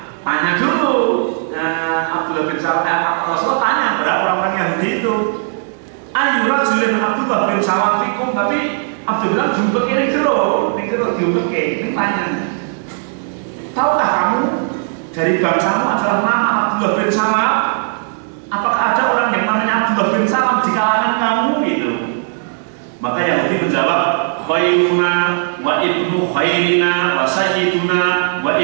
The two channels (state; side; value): silent; left; digital silence